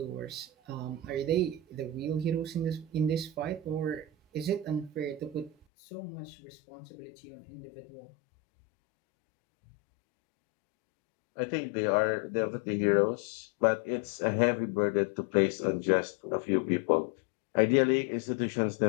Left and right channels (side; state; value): right; drops out; at 5.7 s